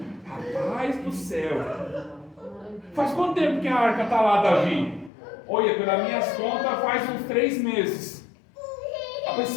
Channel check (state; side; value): drops out; right; at 5.1 s